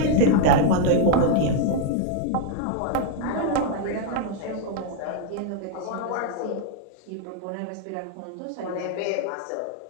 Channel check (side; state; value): both; different; correlation 0.00